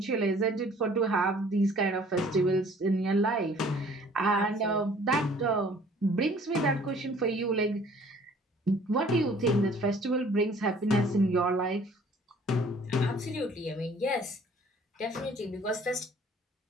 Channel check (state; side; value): normal; both; correlation 0.54